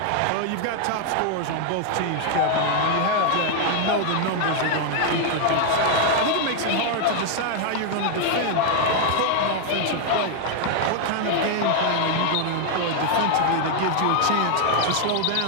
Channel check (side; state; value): both; different; correlation 0.00